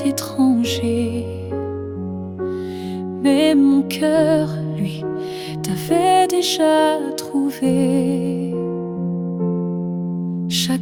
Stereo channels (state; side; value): identical; both; correlation 1.00